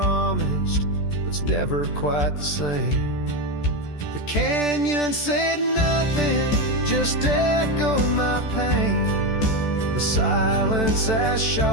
but it's never quite the same. The canyon said nothing, just echoed my pain. The silence as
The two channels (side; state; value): right; late; 14 ms